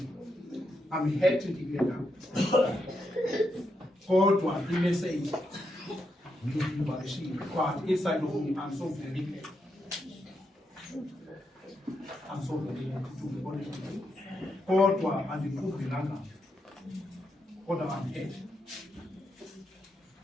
I'm happy to hear that. Kodwa i-message but inside of me, I'm so very glad. I'm so very glad to be honest with you. Kodwa andiqubhelanga. Kodwa I'm happy.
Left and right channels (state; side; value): normal; both; correlation 0.82